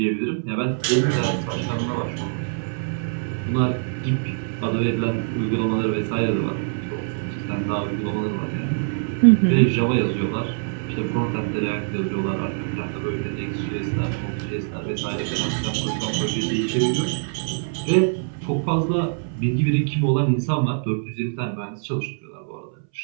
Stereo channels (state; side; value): silent; left; 60 dB below the other